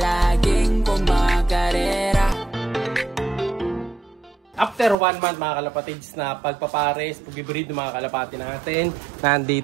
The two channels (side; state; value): left; drops out; at 5.0 s